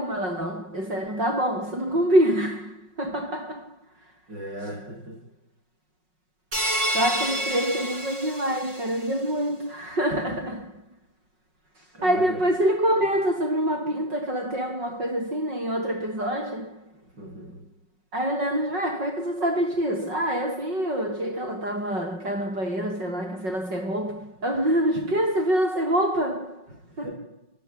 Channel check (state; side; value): late; left; 5.4 ms